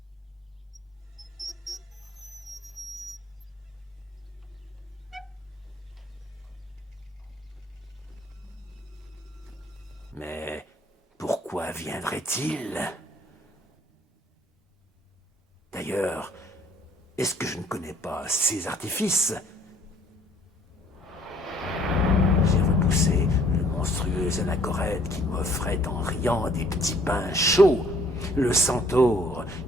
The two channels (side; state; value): both; normal; correlation 0.60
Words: mais pourquoi viendrait-il? D'ailleurs, est-ce que je ne connais pas ces artifices? J'ai repoussé le monstrueux anachorète qui m'offrait en riant des petits pains chauds, le centaure